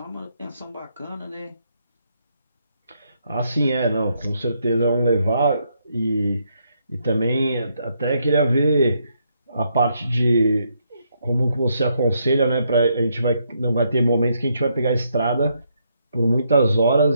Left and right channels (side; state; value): both; inverted; correlation -0.76